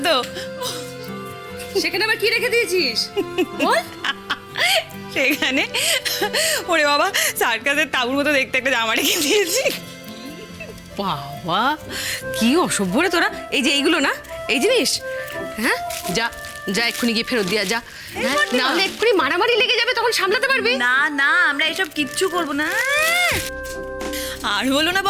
তো? সেখানে আবার কি রেখে দিয়েছিস বল। সেখানে ওরে বাবা, সার্কাসের তাঁবুর মতো দেখতে একটা জামা রেখে দিয়েছি। বাবা, কি অসভ্য রে তোরা। এই যে এইগুলো না, এই জিনিস, হ্যাঁ, যা যা এক্ষুনি গিয়ে ফেরত দিয়া যা। হ্যাঁ, না হলে এক্ষুনি মারামারি লেগে যাবে, তখন সামলাতে পারবি না না, আমরা এসব কিচ্ছু করবো না। আর বলো না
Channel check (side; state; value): both; identical; correlation 1.00